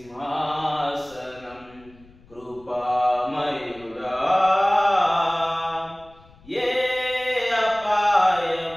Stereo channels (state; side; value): noise; left; rumble, 26 dB below the sound